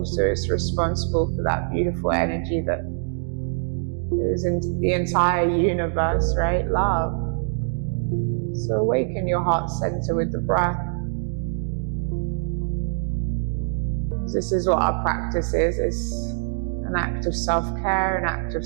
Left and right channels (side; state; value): left; silent; digital silence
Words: it's responsible for that beautiful energy that is in the entire universe, right? Love. So awaken your heart center with the breath. This is what our practice is. It's an act of self-care, an act of